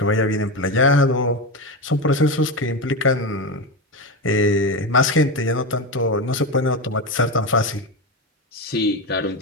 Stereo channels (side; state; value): both; normal; correlation 0.17